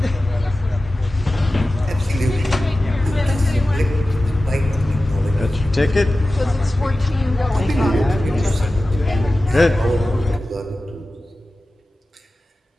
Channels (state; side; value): normal; both; correlation 0.95